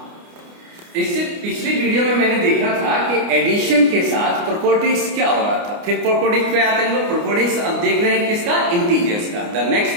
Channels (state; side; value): late; left; 29 ms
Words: इससे पिछली वीडियो में मैंने देखा था कि एडिशन के साथ प्रॉपर्टीज क्या हो रहा था। फिर प्रॉपर्टीज पे आते हैं लोग। प्रॉपर्टीज अब देख रहे हैं किसका? इंटीजर्स का। The next